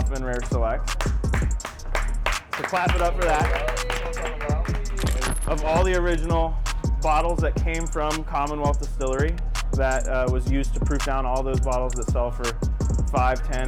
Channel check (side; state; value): both; identical; correlation 1.00